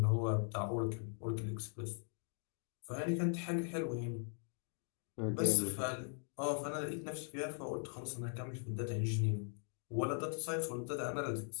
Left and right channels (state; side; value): silent; right; 51 dB below the other